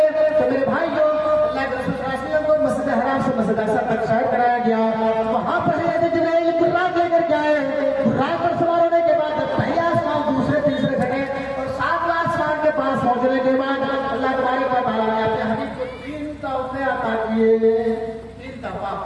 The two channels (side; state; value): both; identical; correlation 1.00